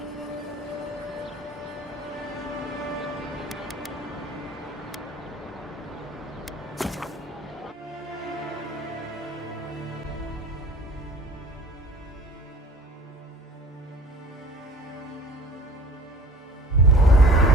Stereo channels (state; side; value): normal; both; correlation 0.46